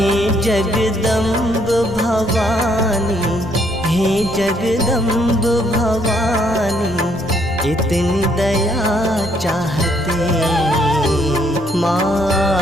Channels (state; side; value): normal; both; correlation 0.69